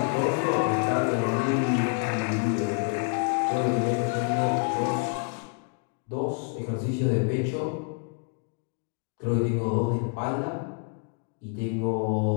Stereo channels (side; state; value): right; quieter; 39.2 dB